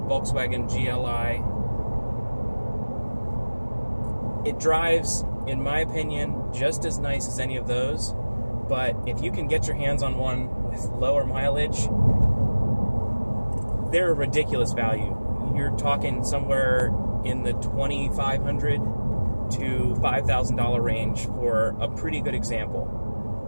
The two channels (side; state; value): both; inverted; correlation -1.00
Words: Volkswagen GLI. It drives, in my opinion, just as nice as any of those, but if you can get your hands on one with lower mileage, they're a ridiculous value. You're talking somewhere in the $2,500 to $5,000 range for a pretty good example.